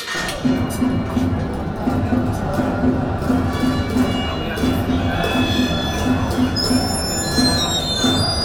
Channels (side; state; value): both; identical; correlation 1.00